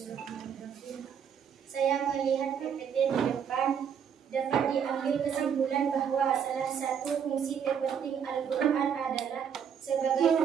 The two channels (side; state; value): left; quieter; 7.8 dB